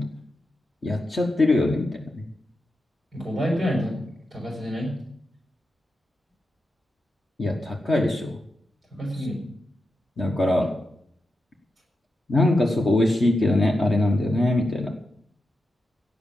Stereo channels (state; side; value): normal; both; correlation 0.88